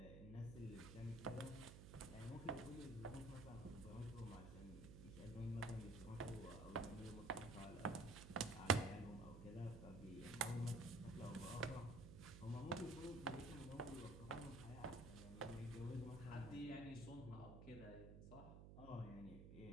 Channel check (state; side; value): noise; right; hum, 11 dB below the sound